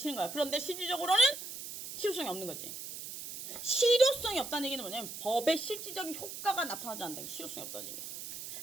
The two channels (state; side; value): noise; right; hiss, 9 dB below the sound